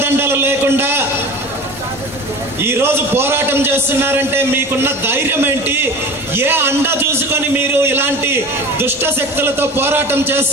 లేకుండా ఈరోజు పోరాటం చేస్తున్నారంటే మీకున్న ధైర్యం ఏంటి? ఏ అండ చూసుకొని మీరు ఇలాంటి దుష్ట శక్తులతో పోరాటం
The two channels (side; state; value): both; normal; correlation 0.36